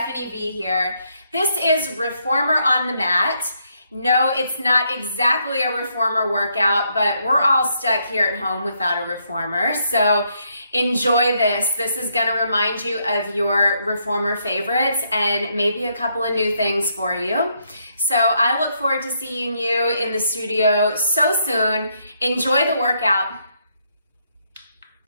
V here. This is Reformer on the Mat. No, it's not exactly a reformer workout, but we're all stuck here at home without a reformer. So enjoy this. This is gonna remind you of your reformer favorites and maybe a couple of new things for you. So I look forward to seeing you in the studio so soon. Enjoy the workout.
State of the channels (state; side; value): inverted; both; correlation -0.75